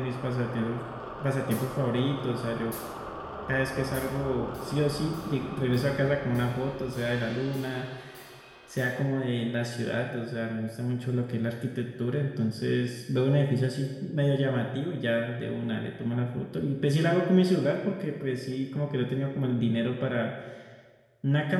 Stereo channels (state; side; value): identical; both; correlation 1.00